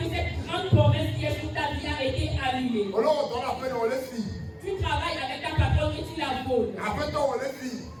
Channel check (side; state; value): both; identical; correlation 1.00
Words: que cette grande promesse qui est sur ta vie a été annulée. Tu travailles avec ta patronne et tu la voles.